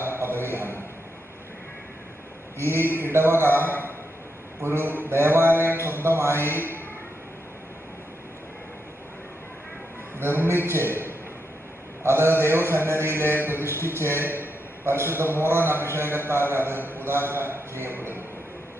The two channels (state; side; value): normal; both; correlation 0.83